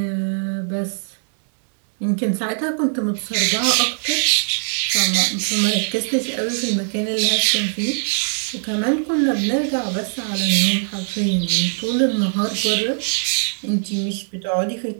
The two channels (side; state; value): left; silent; 65 dB below the other